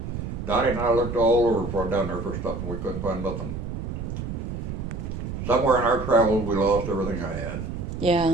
Dottie and I looked all over for down there for stuff, and we couldn't find nothing. Somewhere in our travels, we lost everything I had.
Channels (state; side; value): noise; right; rumble, 5 dB below the sound